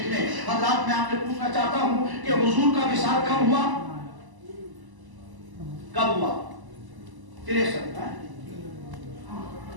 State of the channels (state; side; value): late; left; 1.0 ms